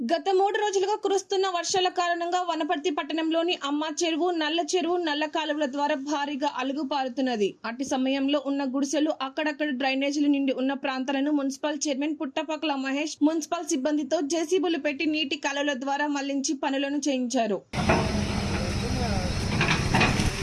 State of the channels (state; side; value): identical; both; correlation 1.00